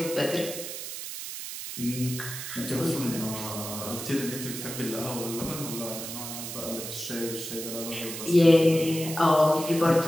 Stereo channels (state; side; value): noise; right; hiss, 8 dB below the sound